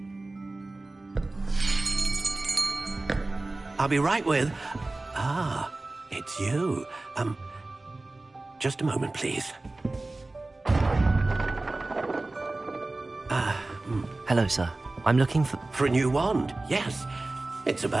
I'll be right with... Ah, it's you. Just a moment, please. Hello, sir. I'm looking for... For a new wand, yes. It's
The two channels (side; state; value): left; quieter; 3.0 dB